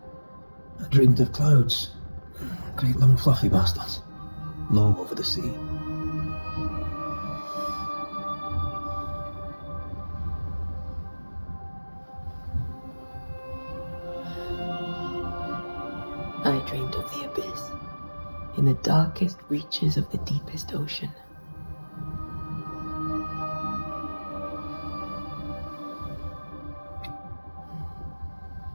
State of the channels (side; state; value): both; inverted; correlation -1.00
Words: I dreamed of clouds. Great long fluffy bastards. Low over the sea. I dreamed of the abyss, in the darkest reaches of the deepest ocean.